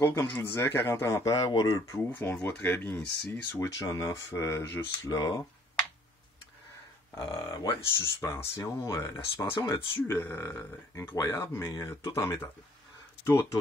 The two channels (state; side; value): normal; both; correlation 0.59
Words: comme je vous disais, 40 ampères, waterproof. On le voit très bien ici. Switch on-off juste là. Ouais, suspension. La suspension là-dessus, incroyable, mais tout en métal.